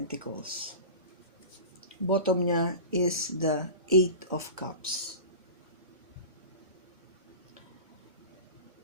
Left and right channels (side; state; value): both; inverted; correlation -0.33